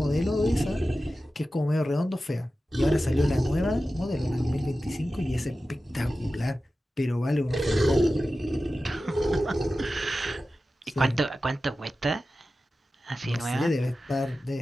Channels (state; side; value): normal; both; correlation 0.94